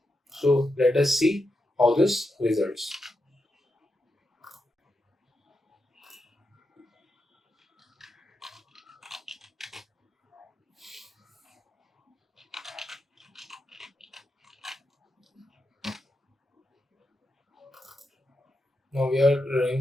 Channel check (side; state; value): both; normal; correlation 0.86